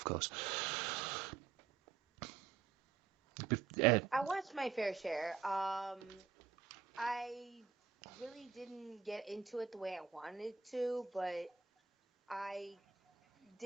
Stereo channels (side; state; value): left; quieter; 6.0 dB